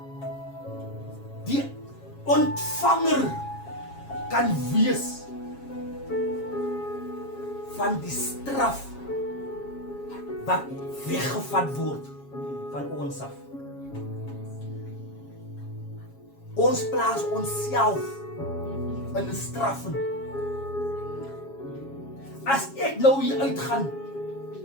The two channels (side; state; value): right; late; 7.3 ms